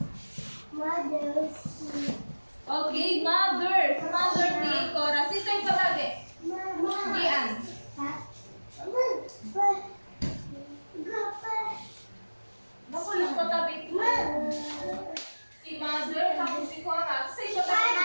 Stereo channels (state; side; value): inverted; both; correlation -1.00